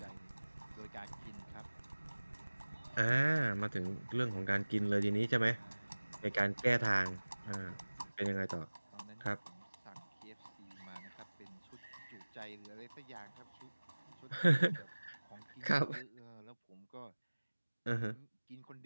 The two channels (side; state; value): both; inverted; correlation -1.00